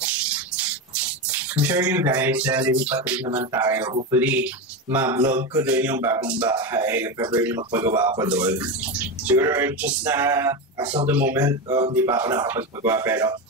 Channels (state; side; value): normal; both; correlation 0.16